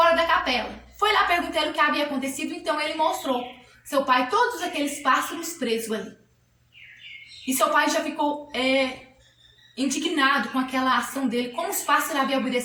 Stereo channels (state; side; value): identical; both; correlation 1.00